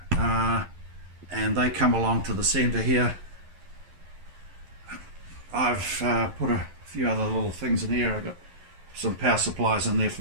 and they come along to the centre here. I've put a few other little things in here. I've got some power supplies in there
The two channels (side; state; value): left; late; 11 ms